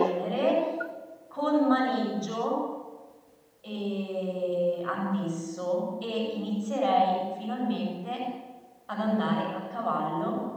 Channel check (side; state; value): both; identical; correlation 1.00